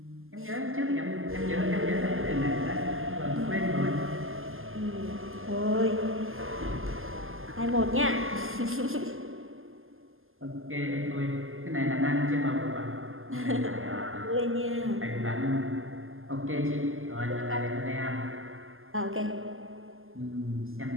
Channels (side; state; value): left; late; 0.60 ms